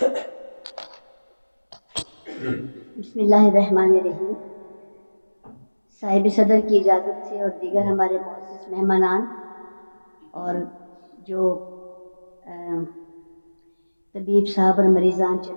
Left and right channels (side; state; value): both; inverted; correlation -1.00